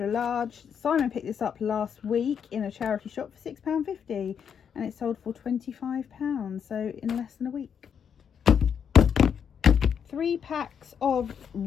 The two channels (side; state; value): right; quieter; 7.6 dB